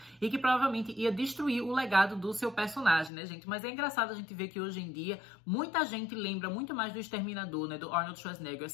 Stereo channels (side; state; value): right; drops out; at 3.1 s